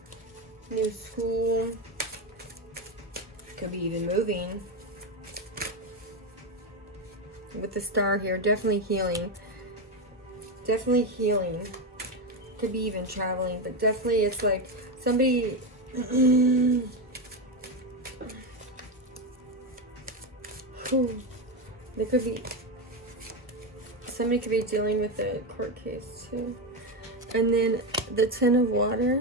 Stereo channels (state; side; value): normal; both; correlation 0.12